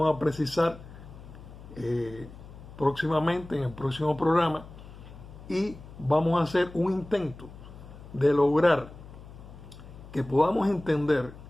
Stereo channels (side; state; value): left; noise; hum, 17 dB below the sound